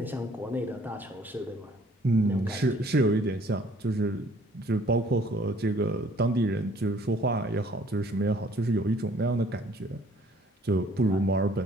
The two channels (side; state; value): both; normal; correlation 0.58